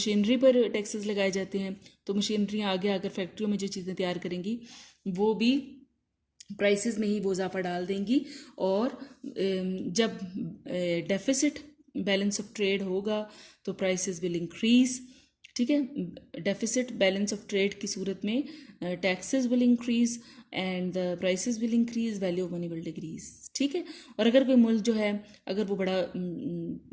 पर टैक्सेस लगाए जाते हैं तो मशीनरियाँ आगे आकर फैक्ट्रियों में जो चीज़ें तैयार करेंगी वो भी प्राइसेस में ही वो इजाफा डाल देंगी। और जब डेफिसिट बैलेंस ऑफ ट्रेड होगा तो प्राइसेस विल इंक्रीज़। ठीक है, डेफिसिट बैलेंस ऑफ ट्रेड की सूरत में taxes will increase and the prices will increase, value of money will decrease. ठीक है, और अगर कोई मुल्क जो है अगर वो बड़ा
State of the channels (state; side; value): identical; both; correlation 1.00